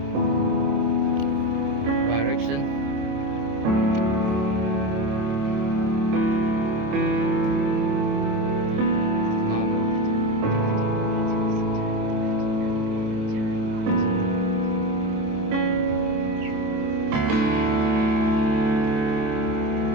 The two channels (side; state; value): left; late; 27 ms